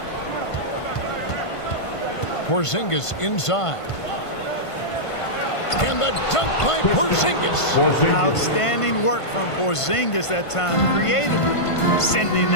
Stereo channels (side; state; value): right; late; 1.5 ms